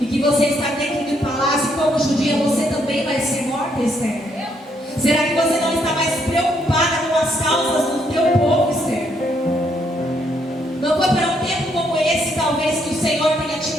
E que você está dentro do palácio, e como judia você também vai ser morta, Esther? Será que você não está mais preocupada com as causas do teu povo, Esther? Não foi para um tempo como esse, talvez, que o Senhor tenha te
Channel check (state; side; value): normal; both; correlation 0.73